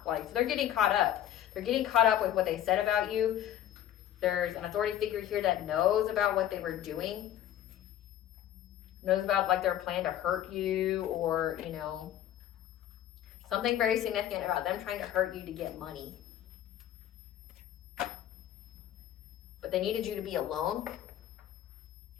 Like, so they're getting caught up. They're getting caught up with what they said about you. There's an authority figure here that knows about what they were doing. Knows about, like, their plan to hurt you, or, you know, something very significant about them trying to hurt you to get money. But they needed you to be alone.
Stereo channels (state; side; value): quieter; right; 11.7 dB